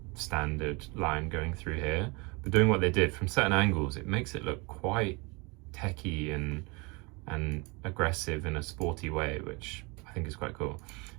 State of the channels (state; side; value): quieter; left; 28.3 dB